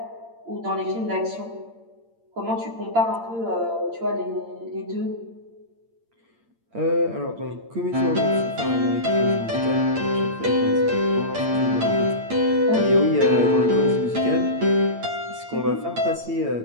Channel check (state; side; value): late; left; 8.8 ms